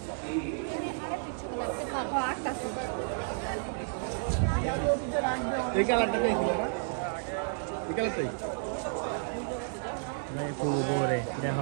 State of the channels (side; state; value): left; silent; digital silence